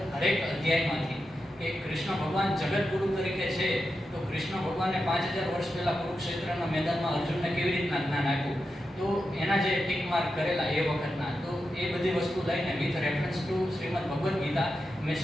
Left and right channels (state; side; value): normal; both; correlation 0.89